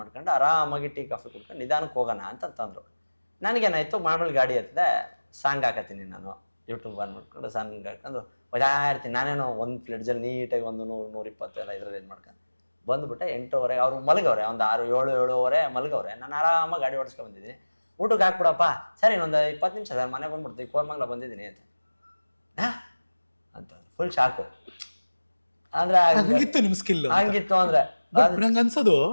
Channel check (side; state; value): both; inverted; correlation -1.00